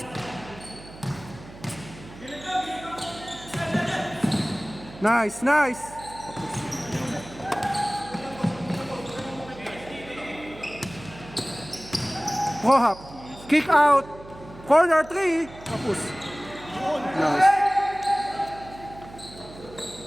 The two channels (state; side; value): noise; right; hum, 17 dB below the sound